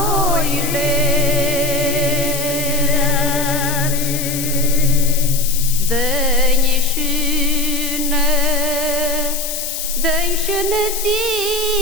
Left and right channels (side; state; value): left; noise; hiss, 5 dB below the sound